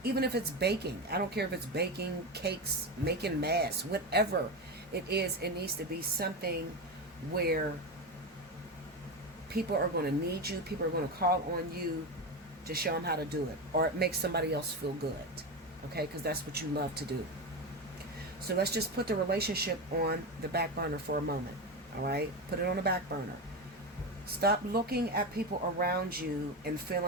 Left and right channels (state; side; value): normal; both; correlation 0.17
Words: even if it's baking, I don't care if it's baking cakes, making masks, whatever it is, it needs to be something where people are going to need you, people are going to call on you to show them how to do it, or it makes somebody else feel good, okay, because that's what you love to do. So let's just put the relationship on the back burner for a moment, all right? Put it on the back burner. Stop looking at people around you and